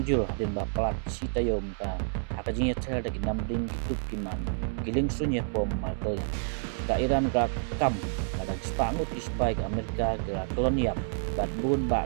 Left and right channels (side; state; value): left; silent; 58 dB below the other